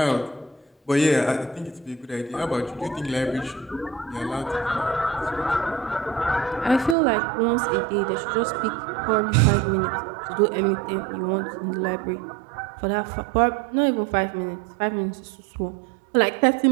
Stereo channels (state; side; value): drops out; left; at 7.0 s